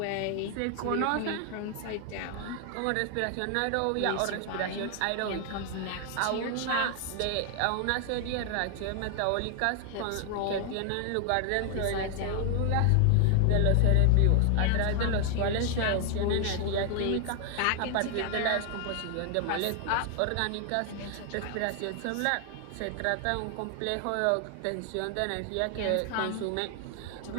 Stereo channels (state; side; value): different; both; correlation 0.01